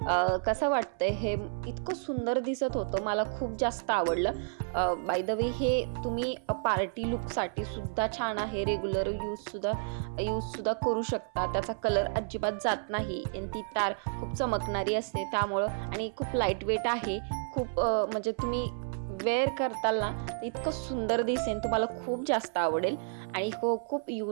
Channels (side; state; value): left; silent; 56 dB below the other